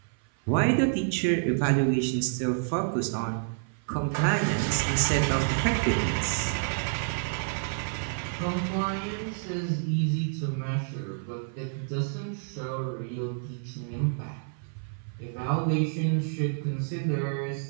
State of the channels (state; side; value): silent; left; 56 dB below the other